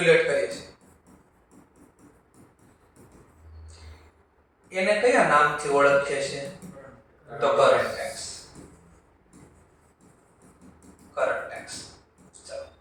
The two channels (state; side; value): identical; both; correlation 1.00